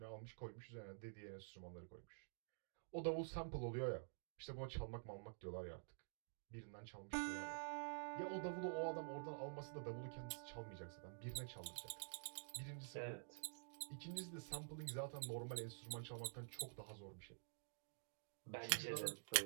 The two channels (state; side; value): silent; left; digital silence